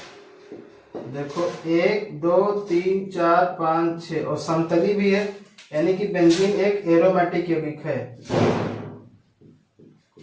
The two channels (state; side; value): identical; both; correlation 1.00